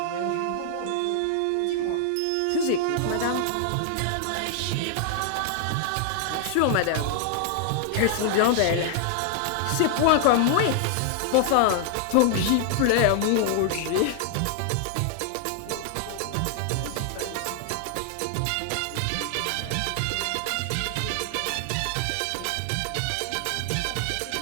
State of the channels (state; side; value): different; both; correlation 0.00